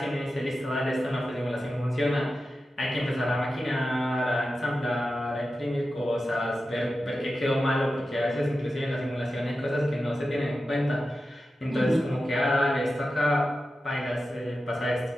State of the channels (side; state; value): both; normal; correlation 0.92